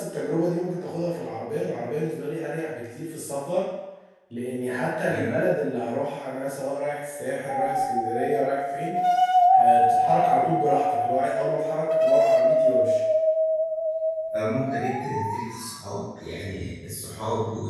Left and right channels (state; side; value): identical; both; correlation 1.00